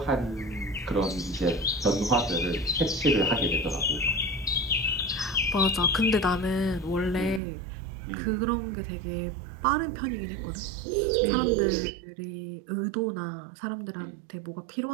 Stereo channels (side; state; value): left; drops out; at 7.4 s